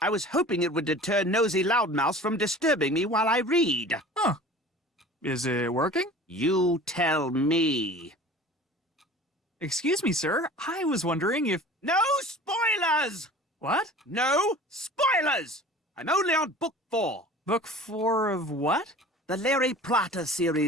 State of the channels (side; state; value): both; normal; correlation 0.42